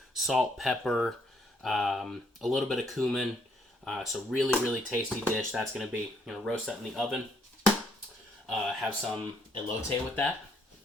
salt, pepper, a little bit of cumin. So really tasty dish. That's going to be, roast that in the oven. Have some elote with that,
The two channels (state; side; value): normal; both; correlation 0.70